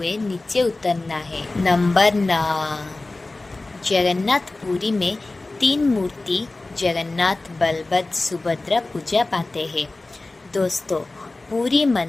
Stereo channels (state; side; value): quieter; right; 3.1 dB